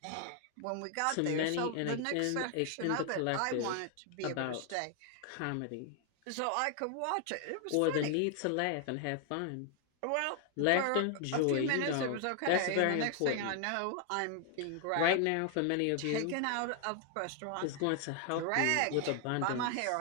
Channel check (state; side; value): different; both; correlation 0.00